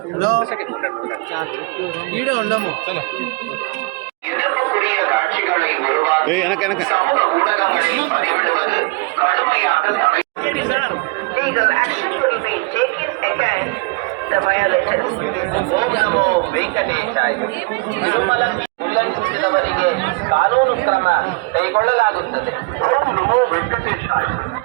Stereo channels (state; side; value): quieter; left; 27.2 dB